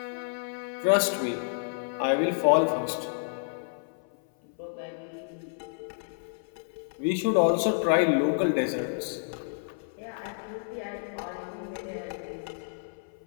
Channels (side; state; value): right; silent; 56 dB below the other